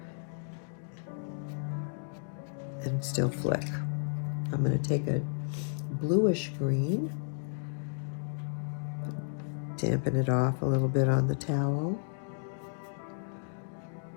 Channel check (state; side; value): silent; right; digital silence